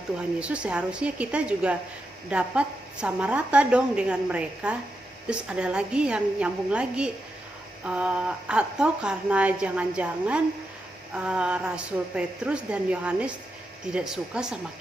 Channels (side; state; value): both; normal; correlation 0.86